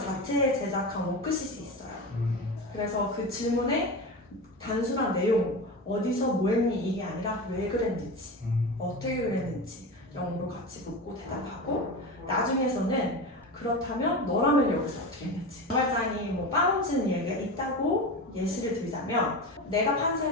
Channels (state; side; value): normal; both; correlation 0.25